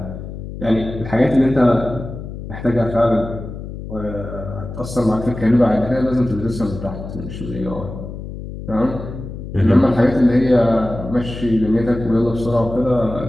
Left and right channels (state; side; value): noise; left; hum, 10 dB below the sound